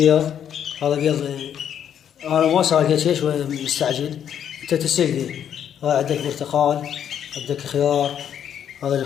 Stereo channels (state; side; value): quieter; right; 9.2 dB